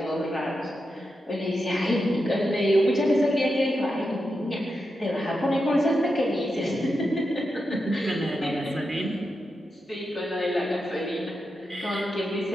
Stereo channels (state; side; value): normal; both; correlation 0.88